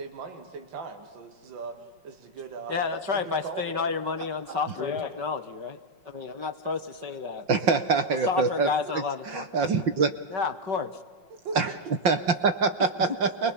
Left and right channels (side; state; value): left; late; 5.7 ms